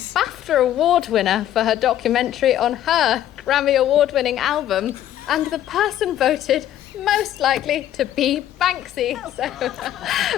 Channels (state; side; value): quieter; right; 12.0 dB